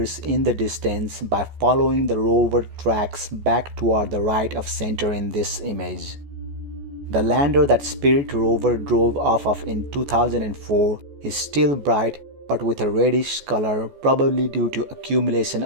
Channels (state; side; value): late; left; 14 ms